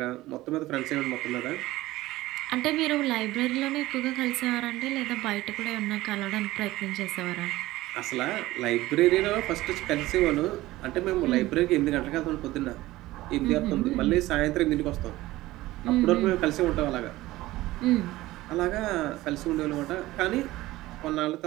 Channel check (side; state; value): left; quieter; 17.5 dB